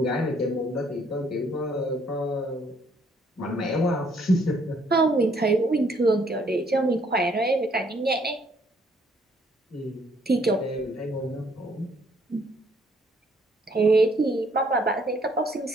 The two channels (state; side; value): normal; both; correlation 0.66